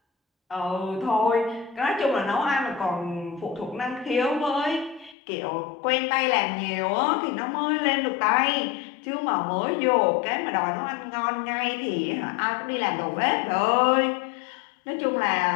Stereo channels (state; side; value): drops out; right; at 5.2 s